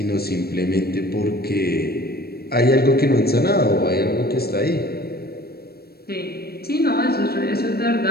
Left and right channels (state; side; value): late; right; 0.46 ms